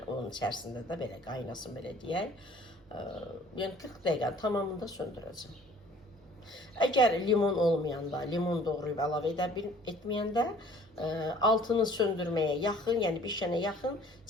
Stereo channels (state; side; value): normal; both; correlation 0.53